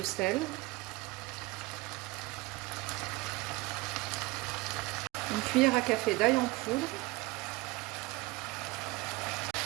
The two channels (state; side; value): quieter; left; 21.7 dB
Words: sel, une cuillère à café d'ail en poudre,